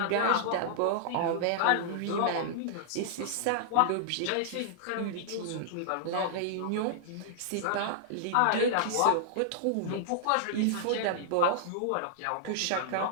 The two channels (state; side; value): different; both; correlation -0.01